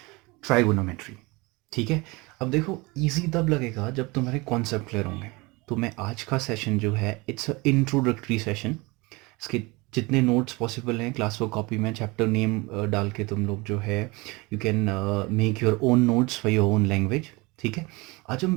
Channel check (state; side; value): quieter; left; 24.9 dB